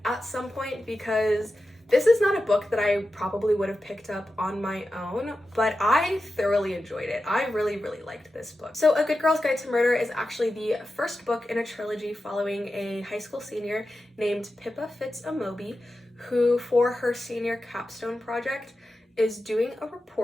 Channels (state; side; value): normal; both; correlation 0.92